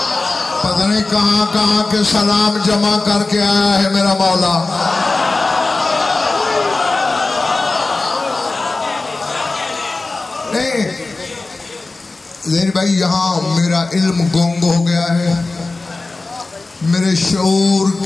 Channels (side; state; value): right; quieter; 3.4 dB